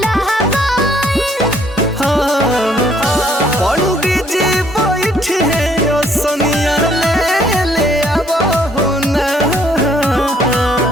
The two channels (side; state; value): both; normal; correlation 0.65